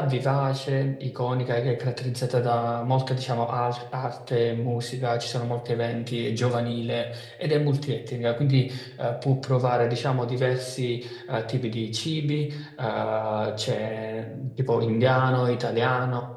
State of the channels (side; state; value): both; identical; correlation 1.00